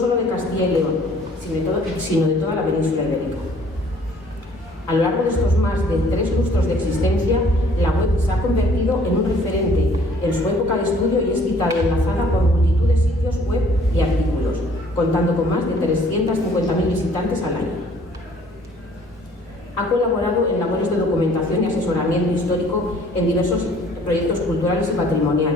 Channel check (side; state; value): both; normal; correlation 0.57